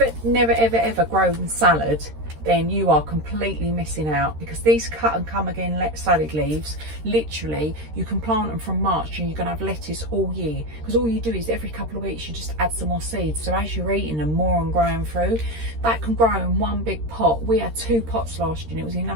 never ever grown salad, then you are completely missing out, because these cut and come again salad leaves, literally you can plant them from March and you're going to have lettuce all year, because all you do is every couple of weeks you just add some more seeds. So as you're eating them, more and growing through, that can grow in one big pot. We had 2 pots last year and it was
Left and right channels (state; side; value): late; left; 13 ms